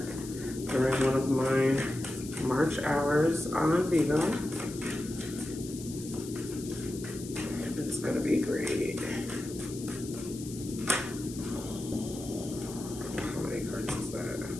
during one of my March hours on Vigo. It's gonna be great. How many cards is that?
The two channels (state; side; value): noise; left; hiss, 14 dB below the sound